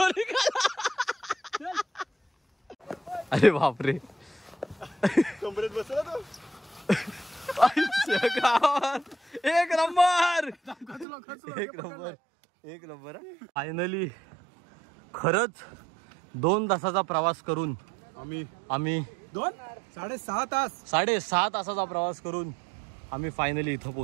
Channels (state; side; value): drops out; left; at 11.1 s